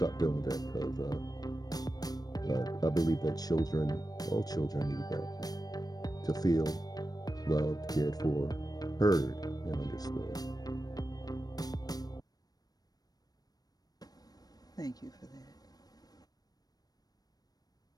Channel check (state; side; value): late; right; 0.19 ms